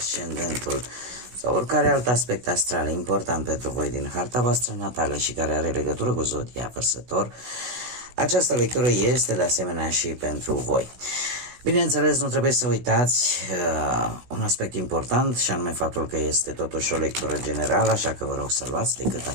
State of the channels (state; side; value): late; left; 16 ms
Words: sau oricare alt aspect astral important pentru voi din harta voastră natală și care are legătură cu Zodia Vărsător, această lectură este de asemenea și pentru voi. Bineînțeles, nu trebuie să uitați un aspect important, și anume faptul că este totuși o lectură generală, așa că vă rog să luați decât